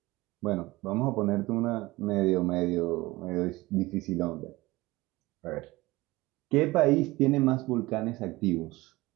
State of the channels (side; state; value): left; quieter; 20.3 dB